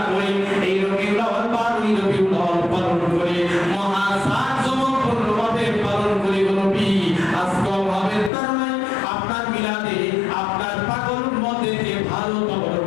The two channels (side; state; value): right; drops out; at 8.3 s